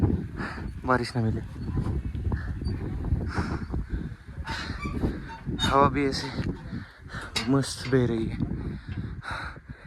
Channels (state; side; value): identical; both; correlation 1.00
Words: बारिश ना मिले। हवा भी ऐसे मस्त बह रही है।